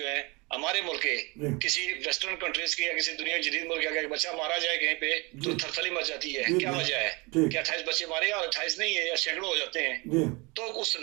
ہیں، ہمارے ملک کے کسی ویسٹرن کنٹریز کے یا کسی دنیا جدید ملک کا بچہ مارا جائے کہیں پہ تو تھرتھلی مچ جاتی ہے؟ کیا وجہ ہے؟ کیا 28 بچے مارے یا 28 نہیں ہے یا سینکڑوں ہو جاتے ہیں؟ تو اس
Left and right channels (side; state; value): left; quieter; 26.8 dB